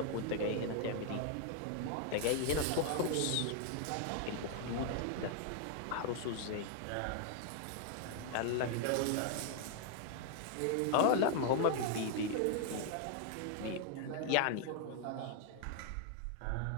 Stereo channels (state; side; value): different; both; correlation 0.00